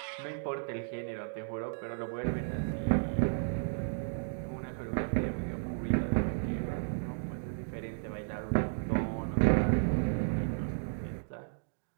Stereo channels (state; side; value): silent; left; digital silence